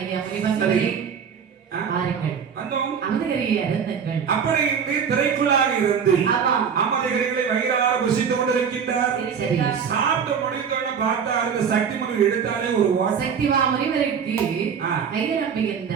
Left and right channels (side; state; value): left; quieter; 7.0 dB